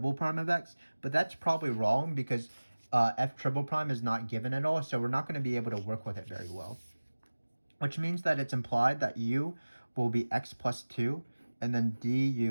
prime of x, but that's probably wrong because f triple prime is not given at all, so we're not going to be able to work with it very well. Which means that it's implied that u will be x plus 2, and then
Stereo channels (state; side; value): inverted; both; correlation -1.00